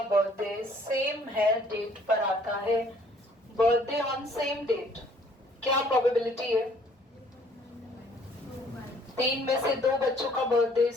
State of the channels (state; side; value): normal; both; correlation 0.59